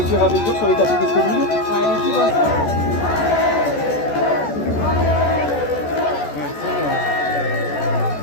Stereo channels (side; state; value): right; late; 14 ms